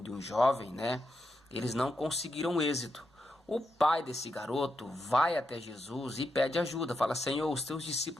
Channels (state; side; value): normal; both; correlation 0.85